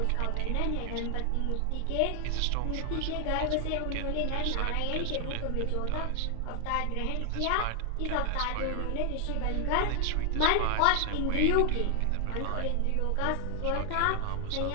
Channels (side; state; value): both; different; correlation 0.00